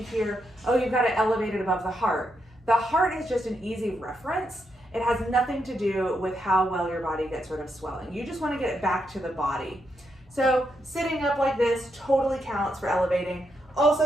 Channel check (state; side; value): normal; both; correlation 0.81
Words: hear, oh, you've got to elevate it above the heart. The heart is just an easy reference. It has nothing to do with how well your body gets rid of swelling. You just want to get it back to the body. So sitting up like this totally counts for elevating.